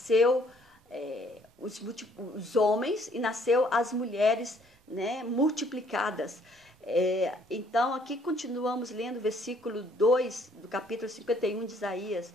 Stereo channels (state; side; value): normal; both; correlation 0.63